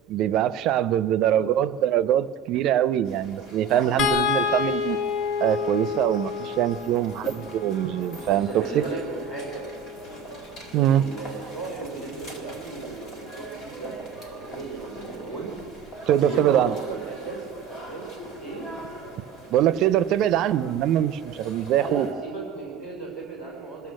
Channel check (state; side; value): quieter; left; 7.1 dB